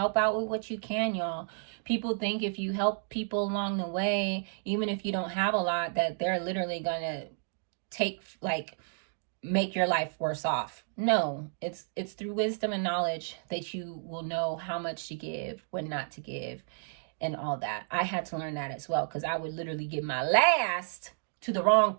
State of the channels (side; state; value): left; silent; digital silence